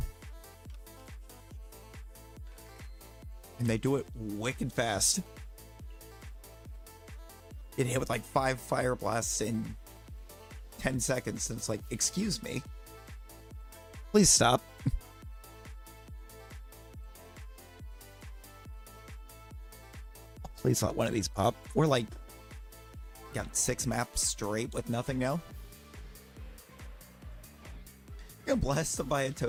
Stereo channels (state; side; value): identical; both; correlation 1.00